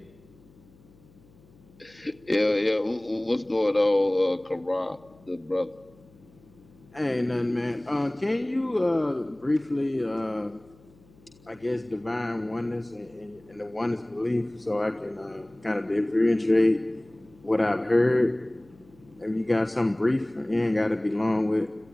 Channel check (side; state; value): left; noise; hum, 27 dB below the sound